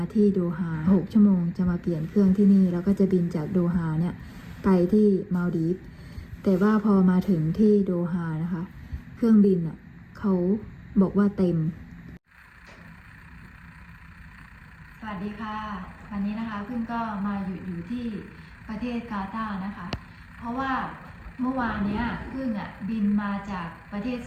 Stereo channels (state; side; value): identical; both; correlation 1.00